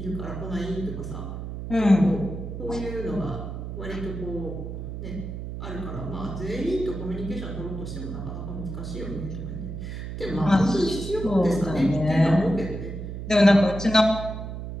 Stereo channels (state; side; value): noise; right; hum, 7 dB below the sound